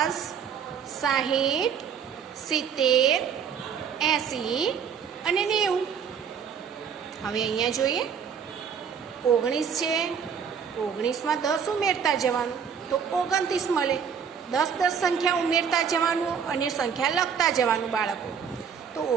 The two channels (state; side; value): quieter; left; 7.2 dB